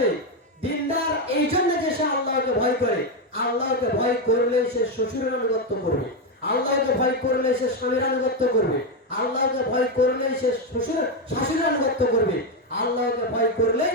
দিনদার এই জন্য যে সে আল্লাহকে ভয় করে। আল্লাহকে ভয় করলে সে শ্বশুরের আনুগত্য করবে, আল্লাহকে ভয় করলে সে স্বামীর আনুগত্য করবে, আল্লাহকে ভয় করলে সে শাশুড়ির আনুগত্য করবে, আল্লাহকে ভয় করলে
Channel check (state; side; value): normal; both; correlation 0.07